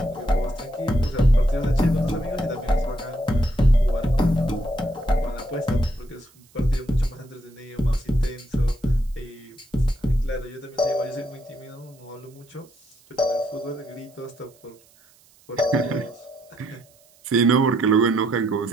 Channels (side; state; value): right; noise; hiss, 30 dB below the sound